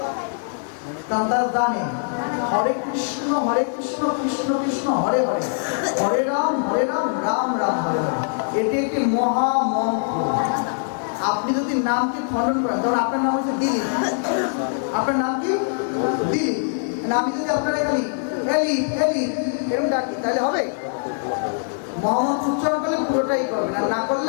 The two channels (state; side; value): silent; right; digital silence